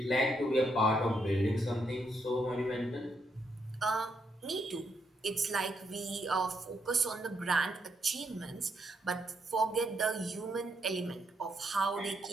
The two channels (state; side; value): normal; both; correlation 0.77